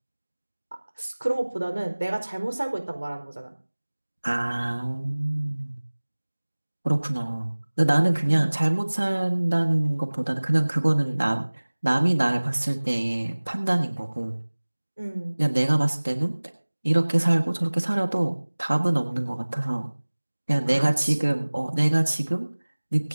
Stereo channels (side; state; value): both; inverted; correlation -1.00